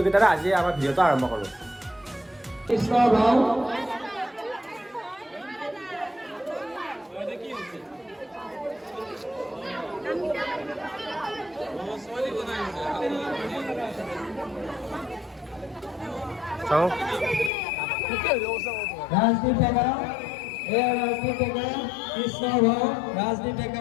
আজি আমাৰ ভিডিঅ'টো আৰম্ভ কৰোঁ কৃষ্ণ ভাও চাও ৰাজদীপ ডেকা ৰাজদীপ ডেকা কৃষ্ণ ভাও ৰাজদীপ ডেকা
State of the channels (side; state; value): right; drops out; at 17.5 s